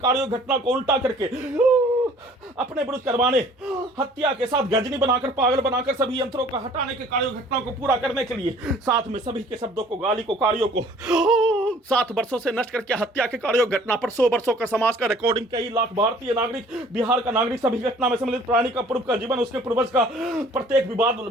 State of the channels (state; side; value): normal; both; correlation 0.53